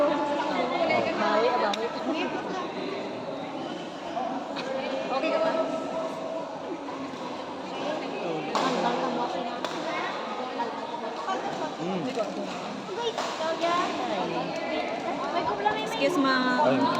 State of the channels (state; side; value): identical; both; correlation 1.00